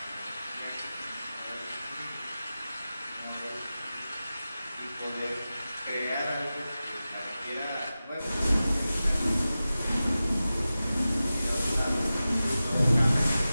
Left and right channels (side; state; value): both; inverted; correlation -0.95